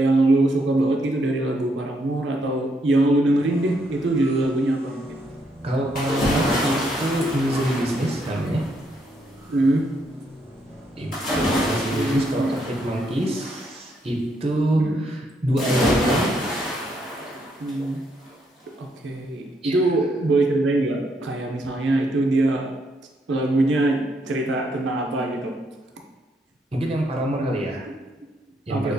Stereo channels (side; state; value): both; normal; correlation 0.75